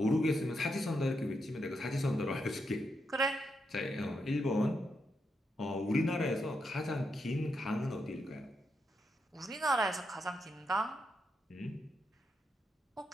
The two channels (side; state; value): both; normal; correlation 0.82